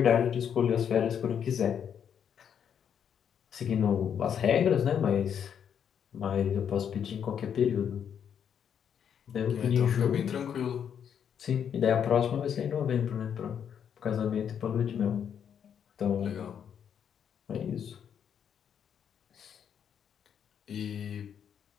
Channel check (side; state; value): right; quieter; 8.3 dB